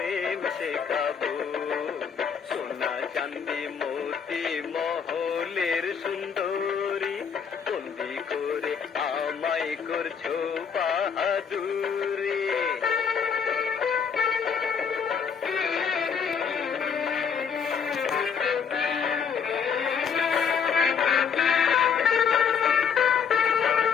শেখাবো। সোনা চান্দি মতি মহলের সুন্দরী, বন্দি করে আমায় করছো বাহাদুরি।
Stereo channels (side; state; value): right; quieter; 6.7 dB